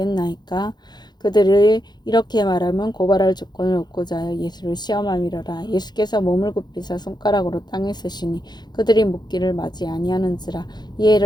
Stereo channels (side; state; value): right; late; 0.21 ms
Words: 그들이 이렇게 말하면 고발할 조건을 얻고자 하여 예수를 시험함이로라. 예수께서 몸을 굽히사 손가락으로 땅에 쓰시니 그들이 묻기를 맞이 아니하는지라. 이에